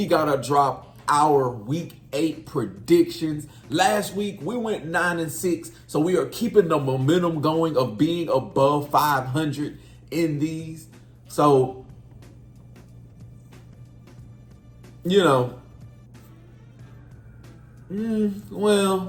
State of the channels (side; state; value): both; identical; correlation 1.00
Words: gotta drop our week 8 predictions. Last week we went 9-6, so we are keeping the momentum going of being above 500 in these. So, we're